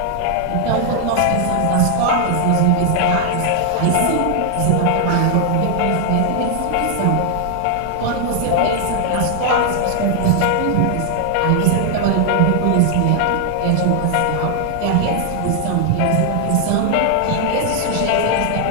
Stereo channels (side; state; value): both; different; correlation 0.00